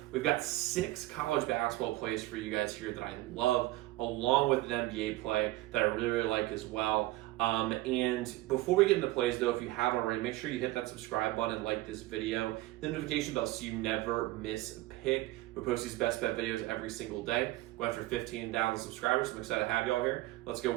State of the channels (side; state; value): left; quieter; 18.1 dB